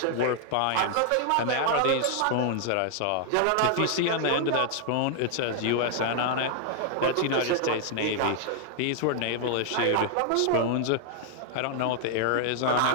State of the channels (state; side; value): different; both; correlation 0.00